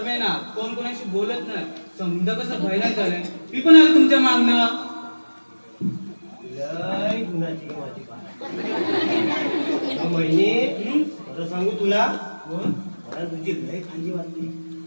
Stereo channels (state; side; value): inverted; both; correlation -1.00